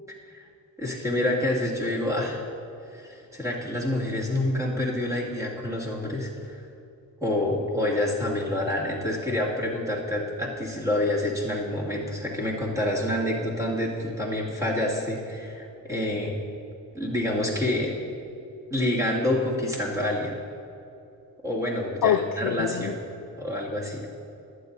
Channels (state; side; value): normal; both; correlation 0.37